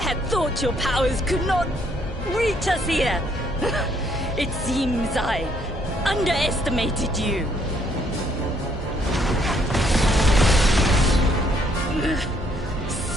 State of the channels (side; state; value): both; normal; correlation 0.68